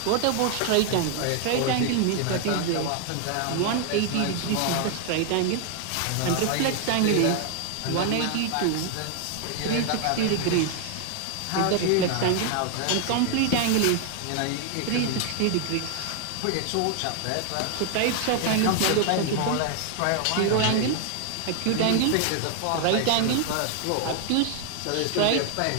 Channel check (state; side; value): different; both; correlation 0.00